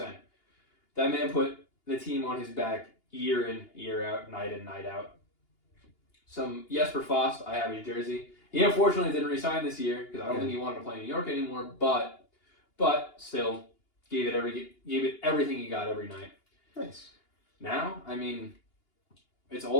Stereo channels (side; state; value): right; late; 2.8 ms